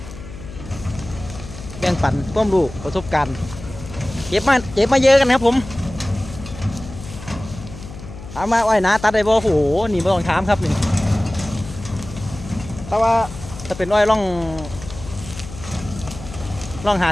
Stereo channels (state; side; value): noise; left; hum, 14 dB below the sound